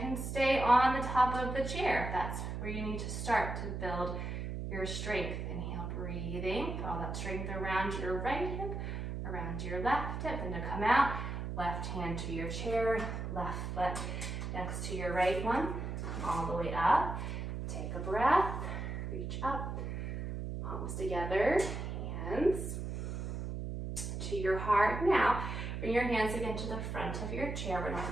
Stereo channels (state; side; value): noise; right; hum, 4 dB below the sound